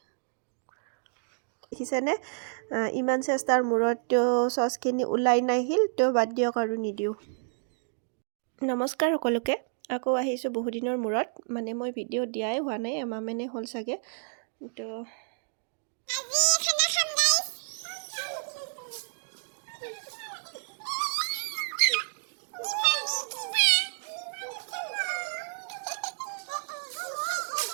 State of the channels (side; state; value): left; silent; digital silence